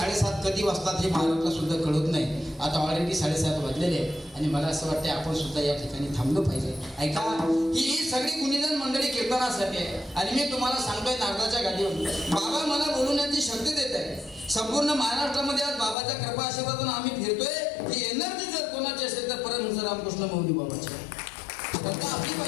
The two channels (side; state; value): right; drops out; at 16.0 s